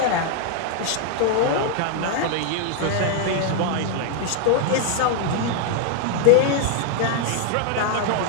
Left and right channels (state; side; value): different; both; correlation 0.00